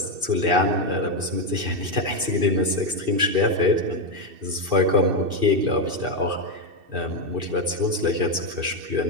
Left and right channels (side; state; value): left; late; 2.6 ms